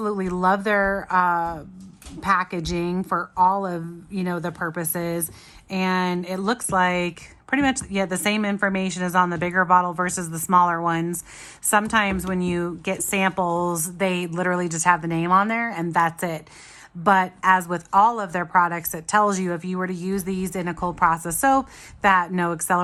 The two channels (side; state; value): both; identical; correlation 1.00